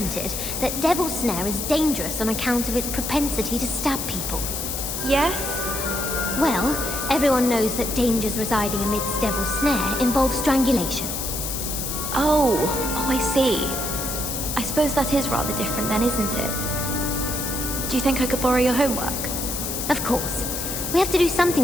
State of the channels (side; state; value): left; noise; hiss, 4 dB below the sound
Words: that Devil's Snare is dangerous on account of its propensity to stab people. Yes? Well, everyone knows that dangers residing amidst Devil's Snare involve strangulation. Oh, I see. I suppose that is rather different then, isn't it? Do you think I could borrow your homework? Of course. We have to do